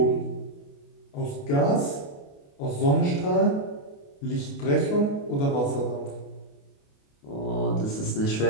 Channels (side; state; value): right; late; 28 ms